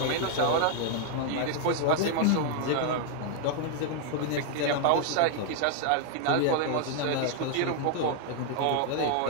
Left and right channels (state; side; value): different; both; correlation 0.00